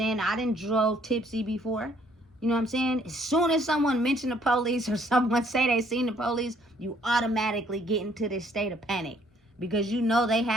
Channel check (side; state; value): both; normal; correlation 0.64